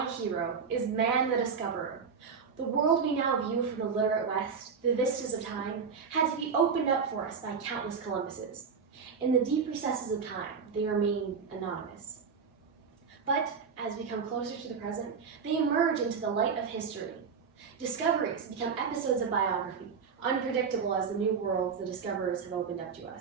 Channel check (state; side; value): quieter; left; 5.9 dB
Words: hero is man the discoverer. The world we now view from the literate West, the vistas of time, had to be opened up for us by countless Columbuses. In the deep recesses of time, they remain anonymous. But as we come closer to the present, they emerge into the light of history. Discoveries become episodes of biography, unpredictable as the new worlds the discoverers have opened up to